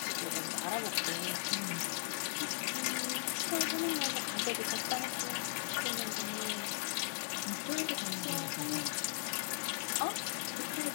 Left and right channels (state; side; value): silent; right; digital silence